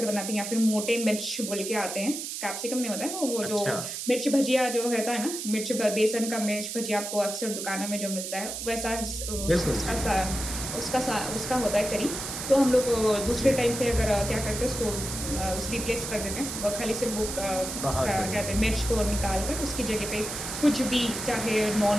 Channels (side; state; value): right; noise; hiss, 6 dB below the sound